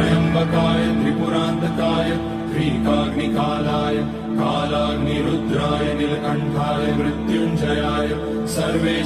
त्रिपुरान्तकाय त्रिकाग्निकालाय कालाग्निरुद्राय नीलकण्ठाय मृत्युञ्जयाय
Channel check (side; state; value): both; identical; correlation 1.00